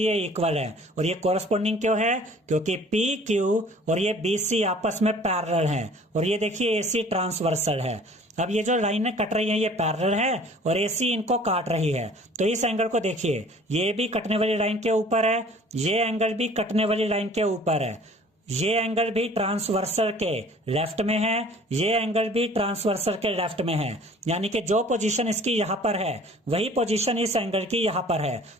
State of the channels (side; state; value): both; normal; correlation 0.50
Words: इक्वल है। और ये कोरस्पोंडिंग क्यों है? क्योंकि पी क्यू और ये बी सी आपस में पैरेलल है, और ये देखिए ए सी ट्रांसवर्सल है। अब ये जो लाइनें कट रही हैं ये पैरेलल है और एसी इनको काट रही है, तो इस एंगल को देखिए ये भी कटने वाली लाइन के ऊपर है, ये एंगल भी कटने वाली लाइन के ऊपर है, ये एंगल भी ट्रांसवर्सल के लेफ्ट में है, ये एंगल भी ट्रांसवर्सल के लेफ्ट में है, यानी कि जो पोजीशन इसकी यहाँ पर है वही पोजीशन इस एंगल की यहाँ पर है।